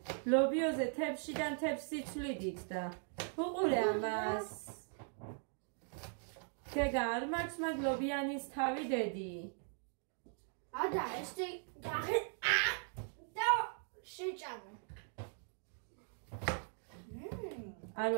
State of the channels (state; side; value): silent; left; 51 dB below the other